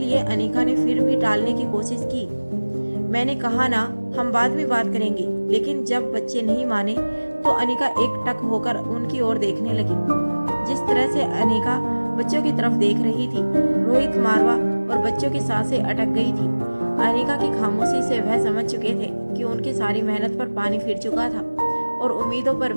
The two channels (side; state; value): both; inverted; correlation -1.00